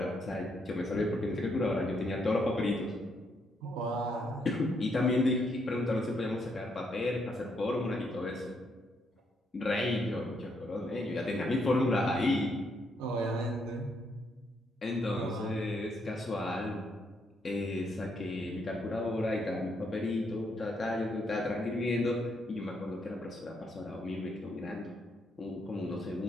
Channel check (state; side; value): normal; both; correlation 0.75